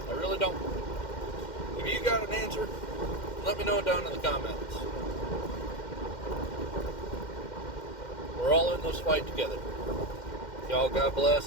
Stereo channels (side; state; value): right; late; 2.1 ms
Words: I really don't. If you got an answer, let me know down in the comments. We're all in this fight together. Y'all, God